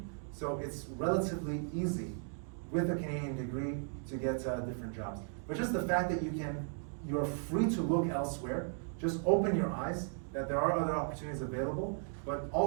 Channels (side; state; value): left; silent; 54 dB below the other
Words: So it's relatively easy with a Canadian degree to get different jobs. But just the fact that you're free to look elsewhere, just open your eyes that there are other opportunities available, but